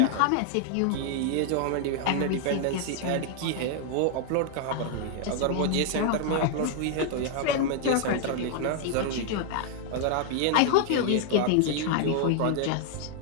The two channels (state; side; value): different; both; correlation 0.00